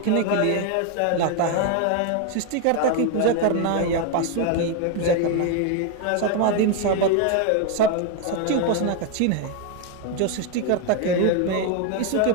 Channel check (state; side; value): different; both; correlation 0.01